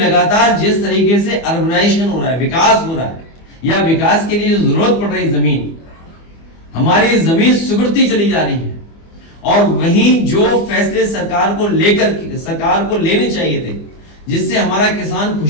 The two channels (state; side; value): late; right; 24 ms